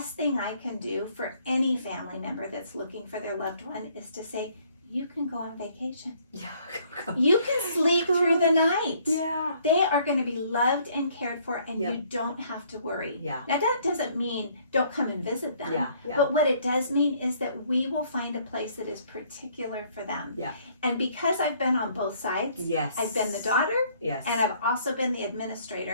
thing I can do for any family member that's looking for their loved one is to say, you can go on vacation. You can sleep through the night. They are going to be loved and cared for, and you don't have to worry. Now, that doesn't mean don't come and visit them. But what it does mean is that we will find a place that is particular for them. And because I've been on both sides, I've been the daughter, and I've also been the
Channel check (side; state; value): both; inverted; correlation -0.62